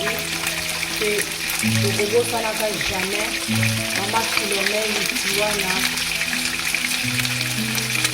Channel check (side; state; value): both; identical; correlation 1.00